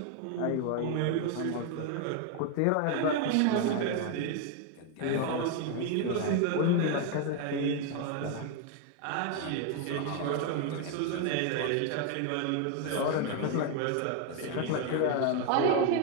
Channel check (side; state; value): both; different; correlation 0.01